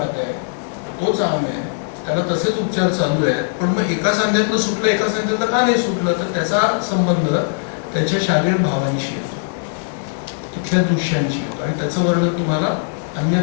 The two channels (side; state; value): right; silent; 66 dB below the other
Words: आहे, तोच आम आहे, त्याला तसेच उपचार चालू आहेत, पण मग एका सांध्यातलं सुटलं एका सांध्यातलं का नाही सुटलं? तर त्याचा संबंध त्याच्या शारीरिक भावांशी येतो, तिथल्या दृश्यांशी येतो. आणि त्याचं वर्णन तुम्हाला